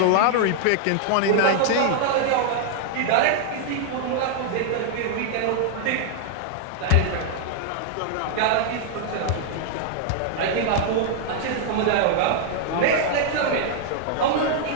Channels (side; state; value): both; different; correlation -0.01